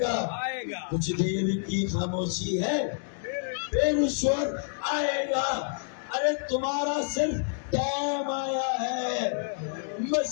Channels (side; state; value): right; silent; digital silence